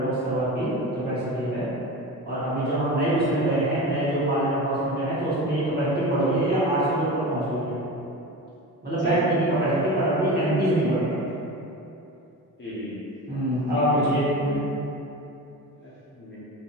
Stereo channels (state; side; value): normal; both; correlation 0.29